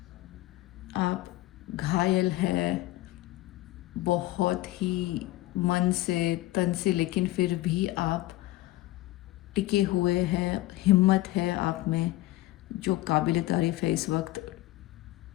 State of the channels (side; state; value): right; quieter; 17.6 dB